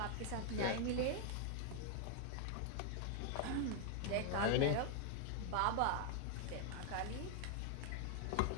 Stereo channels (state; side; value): different; both; correlation 0.00